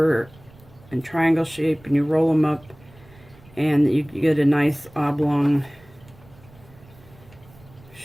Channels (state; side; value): noise; right; rumble, 25 dB below the sound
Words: in triangle shape and you roll them up and you get a nice oblong